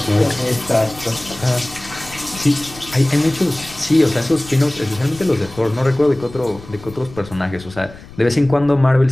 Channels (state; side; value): noise; left; rumble, 18 dB below the sound